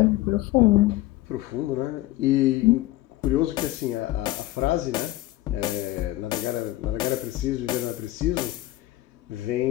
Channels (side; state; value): right; quieter; 16.6 dB